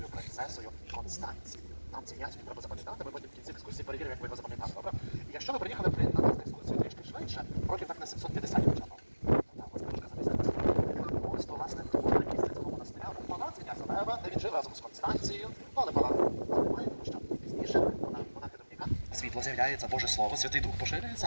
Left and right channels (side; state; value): both; inverted; correlation -1.00